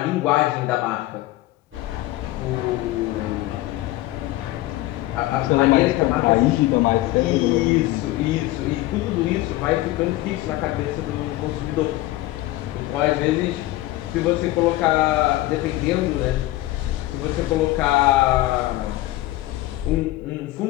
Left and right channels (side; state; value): right; quieter; 17.0 dB